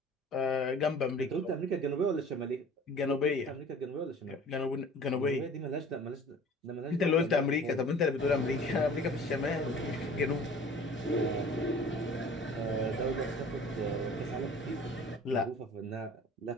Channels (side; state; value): both; normal; correlation 0.46